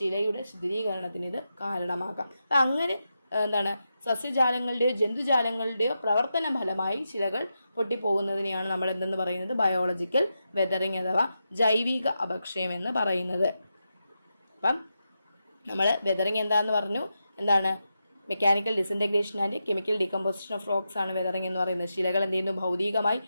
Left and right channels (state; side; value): inverted; both; correlation -0.88